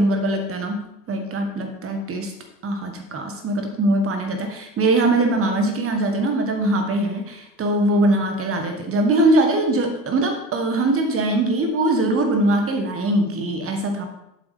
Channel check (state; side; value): normal; both; correlation 0.37